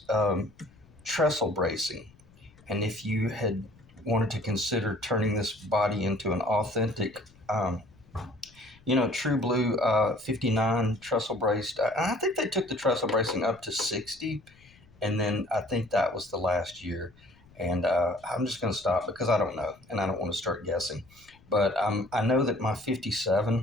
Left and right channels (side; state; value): left; noise; rumble, 27 dB below the sound